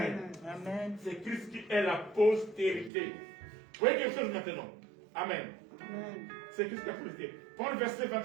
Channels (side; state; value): left; drops out; at 2.9 s